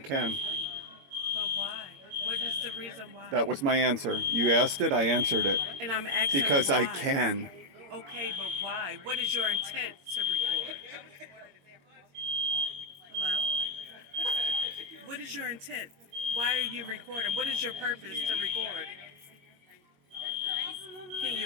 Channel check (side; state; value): left; late; 22 ms